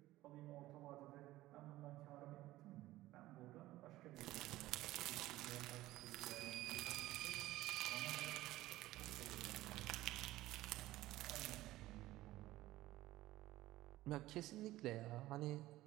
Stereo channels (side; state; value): left; quieter; 16.4 dB